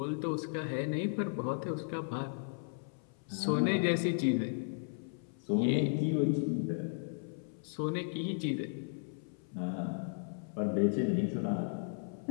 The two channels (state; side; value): silent; right; 54 dB below the other